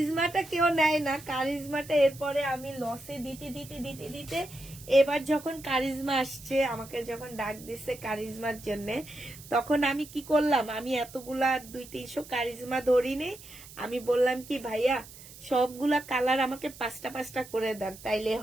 কেউ নেয় না, কারিজমাটা এরপরে আমি লসে দিতে দিতে দিতে দিতে এবার যখন কারিজমা আসছে, আমাকে যখন ডাক দিচ্ছে কারিজমার জন্য, তখন আমি কি করলাম, আমি এতগুলা 200-300 কারিজমা ধরিনি। আমি বললাম কি ভাইয়া সবগুলা কালার আমাকে 5টা করে দেন, তাইলে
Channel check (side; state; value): right; noise; hiss, 18 dB below the sound